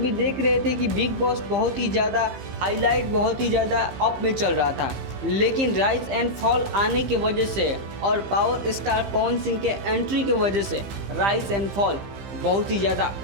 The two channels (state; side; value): late; left; 15 ms